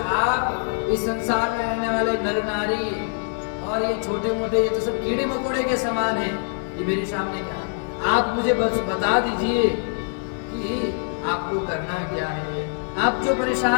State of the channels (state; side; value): silent; right; digital silence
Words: आप इस संसार में रहने वाले नर नारी और ये छोटे मोटे, ये तो सब कीड़े मकोड़े के समान हैं, ये मेरे सामने क्या? आप मुझे बस बता दीजिए कि आपको करना क्या है। आप जो